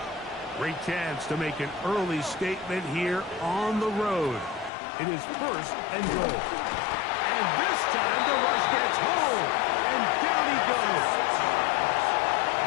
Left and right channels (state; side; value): drops out; right; at 4.7 s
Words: Great chance to make an early statement here on the road. It is 1st and goal. And this time the rush gets home, and down he goes.